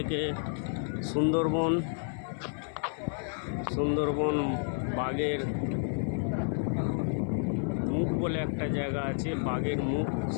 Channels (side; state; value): right; silent; 57 dB below the other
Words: সুন্দরবন বাঘের মুখ বলে একটা জায়গা আছে, বাঘের মুখ,